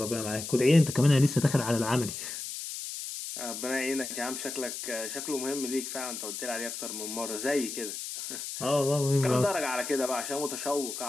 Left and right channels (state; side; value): noise; left; hiss, 7 dB below the sound